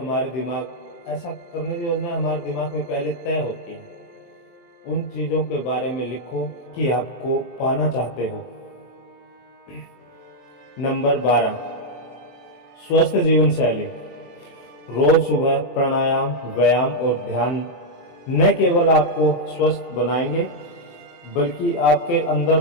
दिमाग में पहले तय होती हैं। उन चीज़ों के बारे में लिखो कि आपको पाना चाहते हो। नंबर 12, स्वस्थ जीवन शैली। रोज सुबह प्राणायाम, व्यायाम और ध्यान न केवल आपको स्वस्थ बनाएंगे बल्कि आपके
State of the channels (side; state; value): right; late; 23 ms